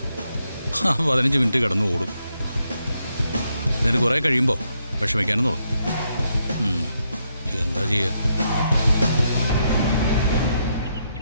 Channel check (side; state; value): both; inverted; correlation -0.79